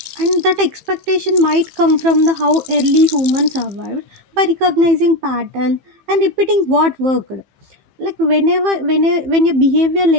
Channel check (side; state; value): left; late; 15 ms